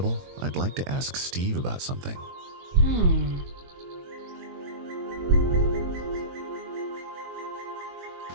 I'd like to ask Steve about something.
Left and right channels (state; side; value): late; left; 22 ms